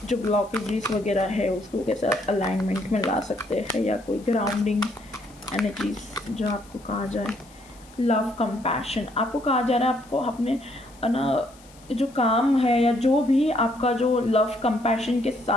जो ब्लॉकेजेस वगैरह है उसको कैसे अलाइनमेंट में ला सकते हैं, या कोई ग्राउंडिंग एनर्जीज जो आपको कहा जाए। लव कंपैशन आपको कहा जा रहा है, आपको अपने ना जो काम है या जो भी आपका जो लव कंपैशन के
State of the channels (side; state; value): left; noise; hiss, 26 dB below the sound